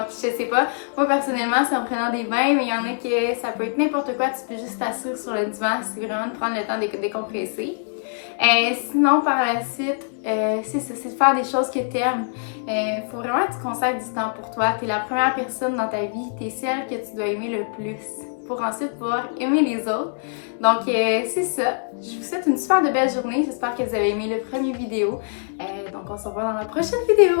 je sais pas. Moi, personnellement, c'est en prenant des bains, mais il y en a qui, ça peut être n'importe quoi. Tu peux juste t'asseoir sur le divan. C'est vraiment de prendre le temps de décompresser. Sinon, par la suite, c'est ça, c'est de faire des choses que tu aimes. Faut vraiment que tu consacres du temps pour toi. Tu es la première personne dans ta vie. Tu es celle que tu dois aimer le plus pour ensuite pouvoir aimer les autres. Donc, c'est ça. Je vous souhaite une super de belle journée. J'espère que vous avez aimé le premier vidéo. Donc, on se revoit dans la prochaine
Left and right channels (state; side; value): silent; right; digital silence